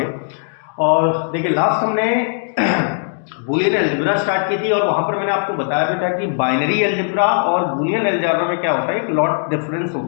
और देखिए लास्ट हमने बूलियन अलजेब्रा स्टार्ट की थी और वहाँ पर मैंने आपको बताया भी था कि बाइनरी अलजेब्रा और बूलियन अलजेब्रा में क्या होता है, एक लॉट डिफरेंस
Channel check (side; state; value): right; silent; digital silence